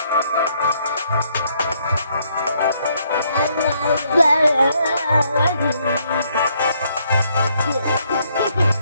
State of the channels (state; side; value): inverted; both; correlation -0.70